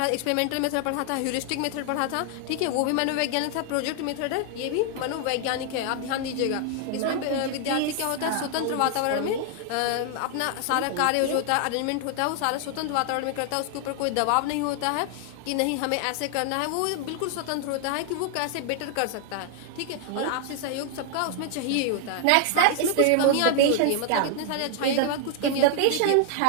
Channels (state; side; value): different; both; correlation 0.00